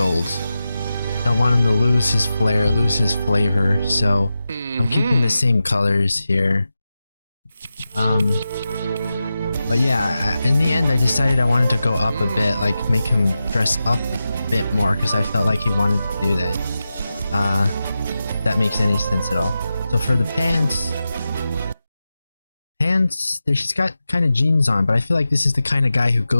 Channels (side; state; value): both; inverted; correlation -0.92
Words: Don't want him to lose his flair, lose his flavor, so I'm keeping the same colors here. But yeah, in the end I decided I wanted to go up a bit, like make him dress up a bit more, because I felt like he wanted to do that. If that makes any sense at all. So for the pants, she's got kind of jeans on, but I feel like this is the kind of guy who